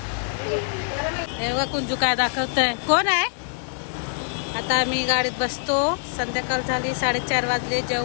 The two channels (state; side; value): silent; right; digital silence